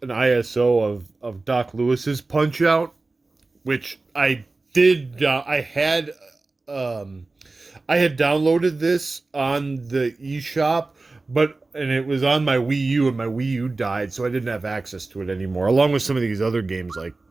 an ISO of Doc Lewis's Punch Out, which I did. I had downloaded this on the eShop, and it was on my Wii U, and my Wii U died, so I didn't have access to it anymore. Along with some of these other games like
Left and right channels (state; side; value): quieter; left; 3.4 dB